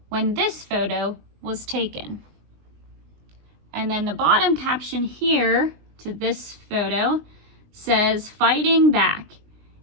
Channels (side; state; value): left; late; 20 ms